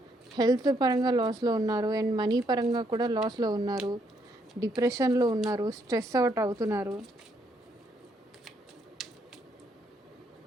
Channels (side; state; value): both; normal; correlation 0.73